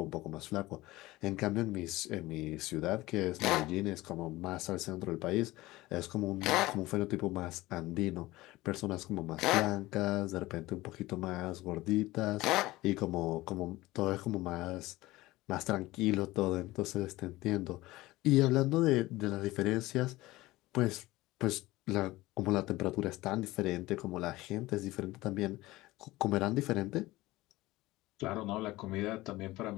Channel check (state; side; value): quieter; right; 18.8 dB